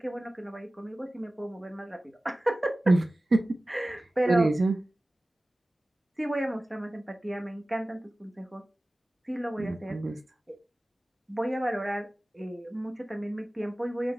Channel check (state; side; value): normal; both; correlation 0.97